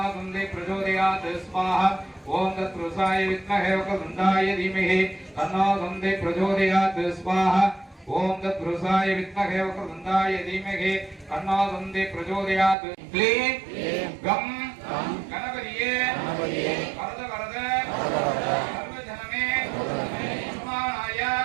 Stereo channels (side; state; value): left; drops out; at 12.8 s